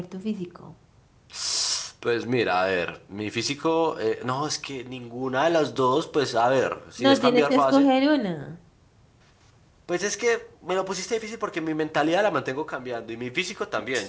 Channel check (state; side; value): identical; both; correlation 1.00